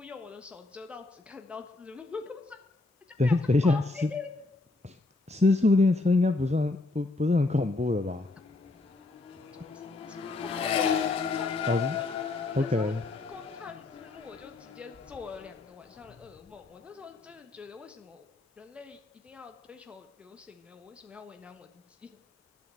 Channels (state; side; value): quieter; right; 3.1 dB